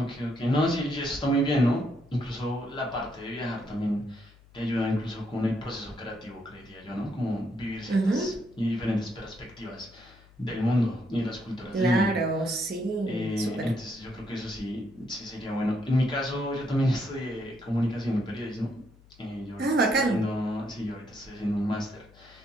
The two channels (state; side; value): noise; left; hum, 26 dB below the sound